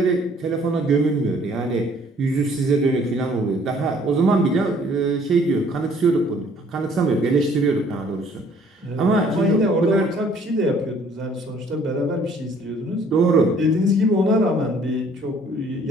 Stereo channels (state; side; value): normal; both; correlation 0.59